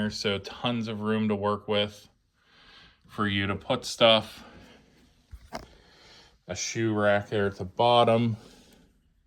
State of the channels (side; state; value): both; identical; correlation 1.00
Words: so tons of room to work with for you to put stuff. A shoe rack there at the bottom.